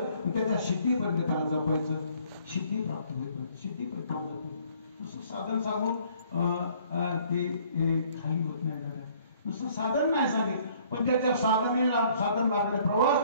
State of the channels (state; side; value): inverted; both; correlation -0.60